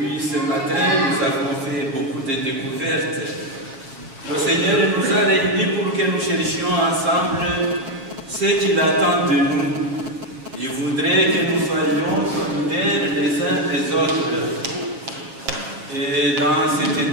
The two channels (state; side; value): late; left; 7.5 ms